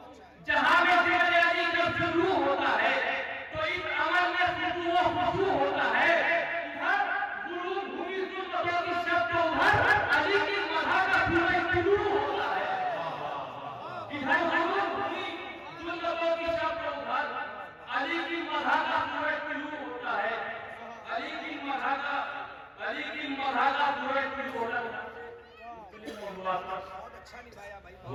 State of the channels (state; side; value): identical; both; correlation 1.00